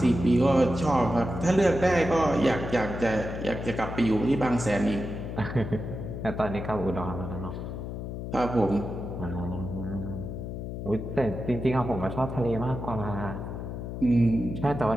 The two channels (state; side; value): noise; left; hum, 6 dB below the sound